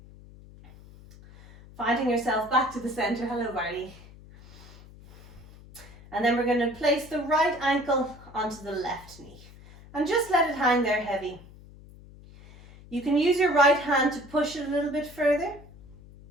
Finding yourself back to the center. Hello, Barley. And then we're going to place the right ankle onto the left knee. And just let it hang there heavy. You can use your right hand to push it a little bit further.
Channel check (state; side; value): noise; left; hum, 20 dB below the sound